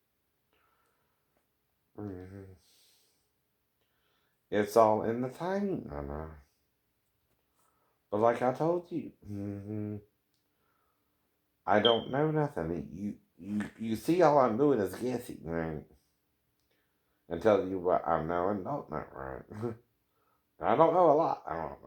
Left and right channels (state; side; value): identical; both; correlation 1.00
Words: It's all in the timing, I know. But like I told you, I don't know nothing. You see all I'm doing is guessing, right? And telling you what I know and don't know, right? I don't know a lot. I don't